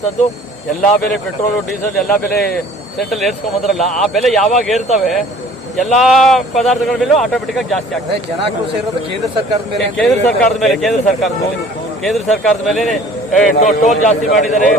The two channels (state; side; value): normal; both; correlation 0.50